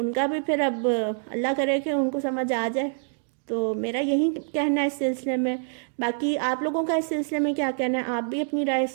کا بھی پھر اب اللہ کرے کہ ان کو سمجھ آ جائے تو میرا یہی کہنا ہے اس سلسلے میں. باقی آپ لوگوں کا اس سلسلے میں کیا کہنا ہے؟ آپ بھی اپنی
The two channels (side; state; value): left; silent; digital silence